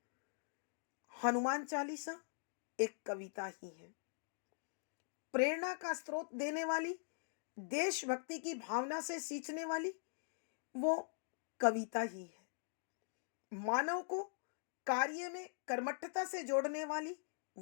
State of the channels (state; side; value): silent; right; digital silence